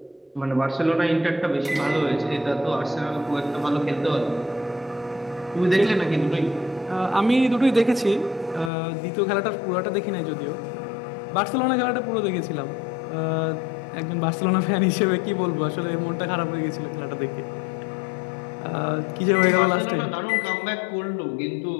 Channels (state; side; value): drops out; right; at 8.7 s